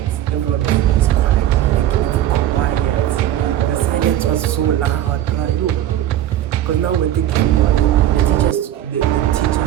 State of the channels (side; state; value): left; quieter; 12.4 dB